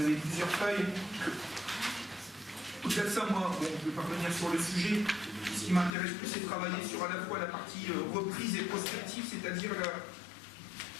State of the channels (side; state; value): right; drops out; at 5.9 s